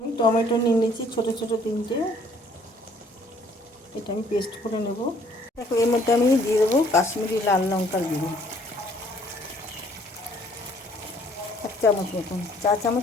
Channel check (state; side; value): normal; both; correlation 0.60